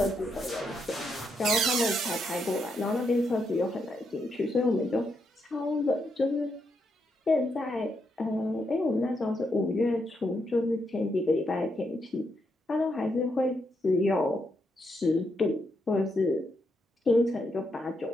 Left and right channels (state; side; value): normal; both; correlation 0.80